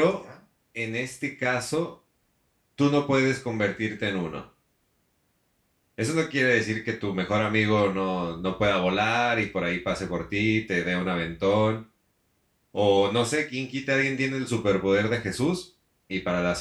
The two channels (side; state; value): both; identical; correlation 1.00